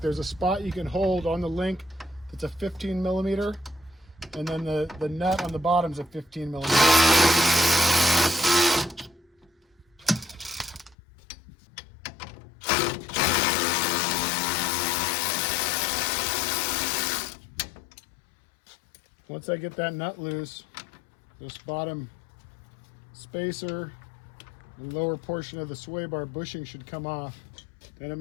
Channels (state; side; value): drops out; right; at 11.0 s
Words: a spot you can hold on the link that's a 15 millimeter, and then the nut on the bottom is a 15 millimeter. Once I get that nut loose, this bottom spacer, the lower portion of the sway bar bushing should come off. Then I'm